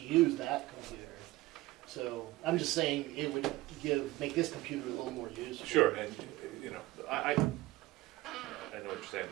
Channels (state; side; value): quieter; left; 18.3 dB